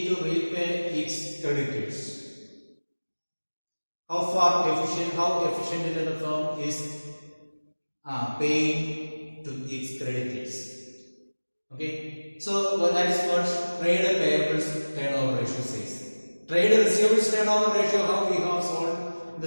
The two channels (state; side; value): inverted; both; correlation -1.00